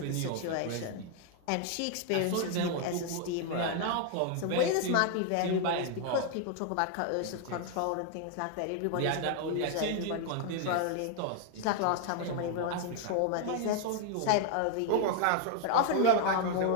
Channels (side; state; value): both; different; correlation 0.00